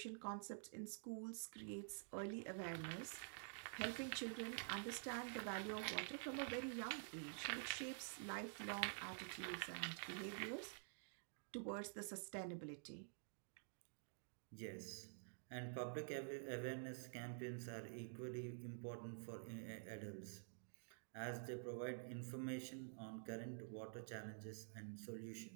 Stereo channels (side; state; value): left; silent; digital silence